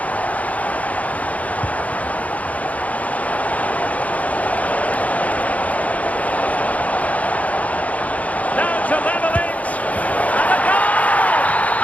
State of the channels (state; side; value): late; right; 0.070 ms